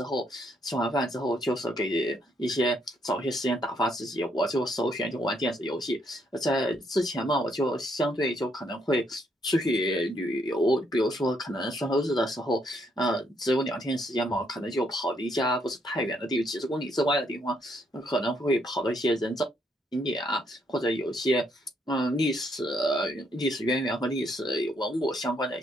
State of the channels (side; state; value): both; normal; correlation 0.73